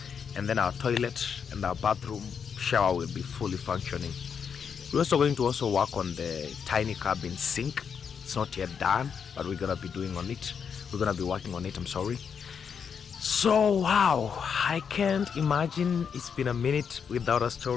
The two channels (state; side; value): quieter; right; 6.9 dB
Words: and then our toilet and our bathroom shower will be fully functioning. We're also going to work on the tiny cabin sink. It's not yet done, but we're gonna be doing on it. We're gonna be working on it, I'm sorry. So wow, I can't imagine it's been a minute without a